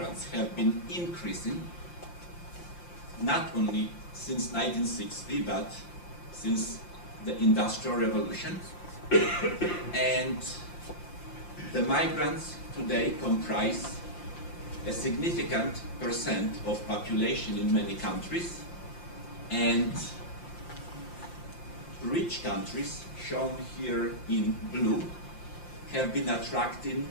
have been increasing, not only since 1960, but since the Industrial Revolution. And the migrants today comprise a significant percent of population in many countries, and rich countries, shown here in blue, have been attracting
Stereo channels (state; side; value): late; right; 5.7 ms